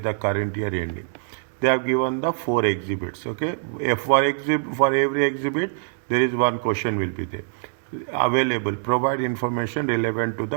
the current year ending? They have given the 4 exhibits. Okay, for every exhibit, there is one question will be there. Available. Provide information relevant to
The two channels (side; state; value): left; silent; digital silence